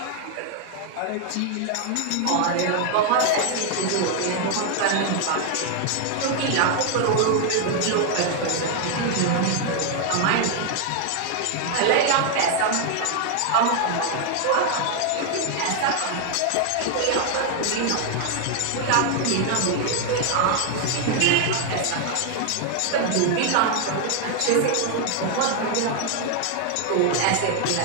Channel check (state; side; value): different; both; correlation 0.00